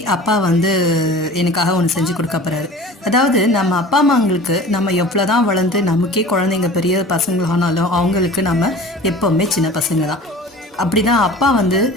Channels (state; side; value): normal; both; correlation 0.41